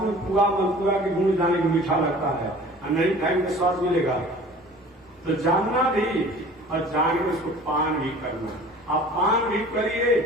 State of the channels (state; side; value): normal; both; correlation 0.45